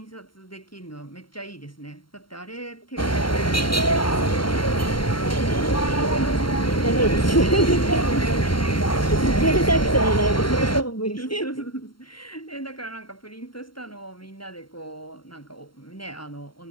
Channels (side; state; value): right; late; 0.73 ms